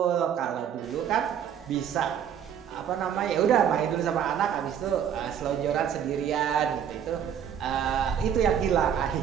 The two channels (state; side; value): quieter; left; 8.8 dB